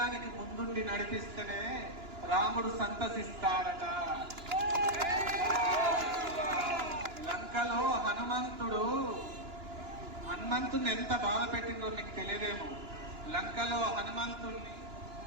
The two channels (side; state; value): left; late; 2.9 ms